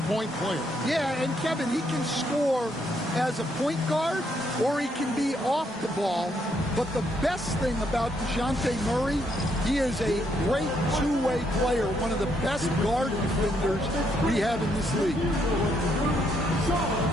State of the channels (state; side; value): normal; both; correlation 0.74